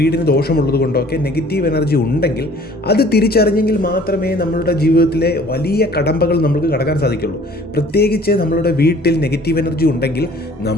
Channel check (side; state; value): both; normal; correlation 0.52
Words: ദോഷമുള്ളത് കൊണ്ടോ ഒക്കെ നെഗറ്റീവ് എനർജി ഉണ്ടെങ്കിൽ അത് തിരിച്ചറിഞ്ഞെങ്കിൽ മാത്രമേ നമ്മളുടെ ജീവിതത്തിലെ വലിയ കടമ്പകൾ നമുക്ക് കടക്കാൻ സാധിക്കുള്ളൂ. പ്രത്യേകിച്ച് നമ്മളുടെ വീട്ടിൽ നെഗറ്റീവ് എനർജി ഉണ്ടെങ്കിൽ